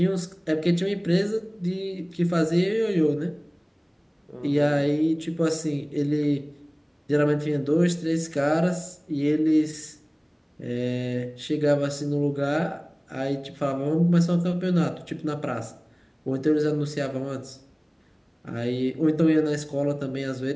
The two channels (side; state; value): both; identical; correlation 1.00